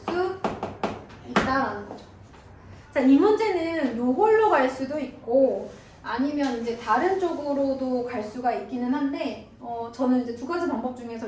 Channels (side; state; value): both; identical; correlation 1.00